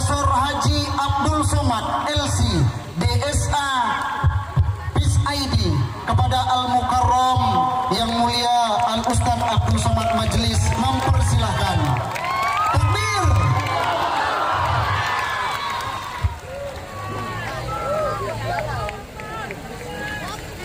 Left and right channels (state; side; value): identical; both; correlation 1.00